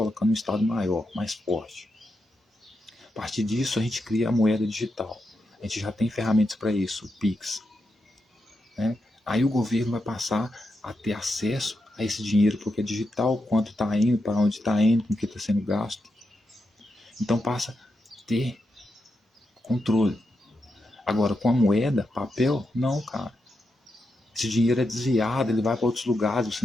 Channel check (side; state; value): both; normal; correlation 0.86